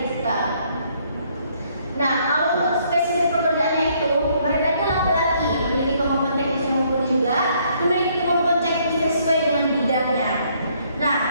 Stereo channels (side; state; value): both; inverted; correlation -0.67